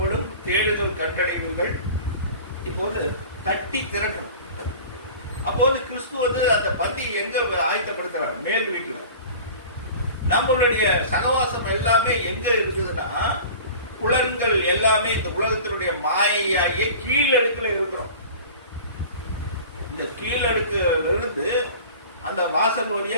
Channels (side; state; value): both; inverted; correlation -0.40